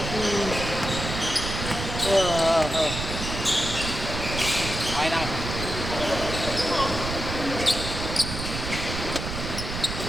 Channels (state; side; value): noise; right; rumble, 5 dB below the sound